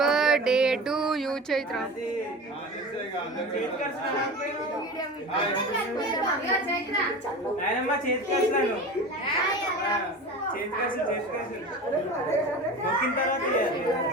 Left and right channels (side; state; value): both; normal; correlation 0.32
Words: to you Chaitra.